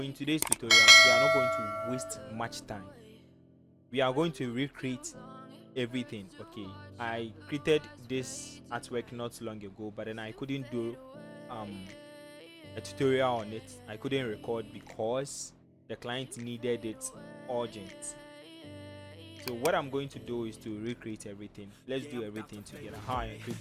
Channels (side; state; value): both; identical; correlation 1.00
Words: in today's tutorial we are not going to waste much time. We are going to recreate everything. Okay, I created this artwork not long ago, but then I couldn't do a tutorial on it. I couldn't record because the client needed it urgent. So what I'm going to do is to recreate everything. Let's do everything together. How I